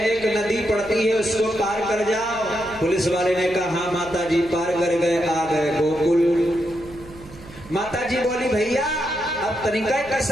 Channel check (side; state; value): right; noise; hum, 19 dB below the sound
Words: नदी पड़ती है उसको पार कर जाओ। पुलिस वाले ने कहा हाँ माता जी पार कर गए, आ गए गोकुल। माता जी बोली भैया अब तनिका